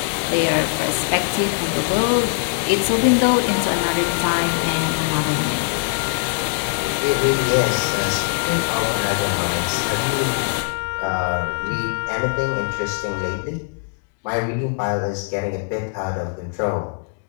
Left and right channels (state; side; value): silent; right; 63 dB below the other